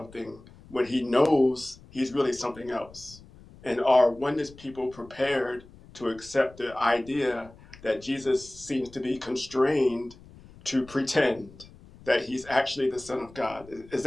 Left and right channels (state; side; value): noise; left; rumble, 22 dB below the sound